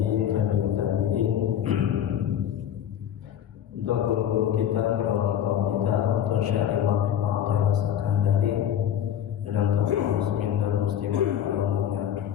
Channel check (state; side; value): quieter; right; 10.0 dB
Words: untuk guru-guru kita, orang tua kita, untuk syarih Muhammad Al-Sakandari dan untuk muslimin dan muslimat umumnya.